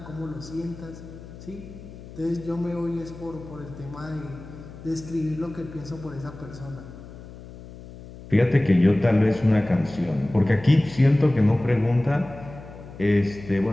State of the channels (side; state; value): left; noise; hum, 16 dB below the sound